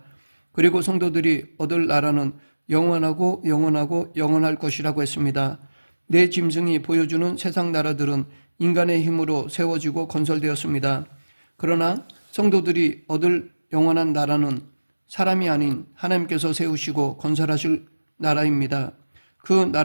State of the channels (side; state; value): both; inverted; correlation -1.00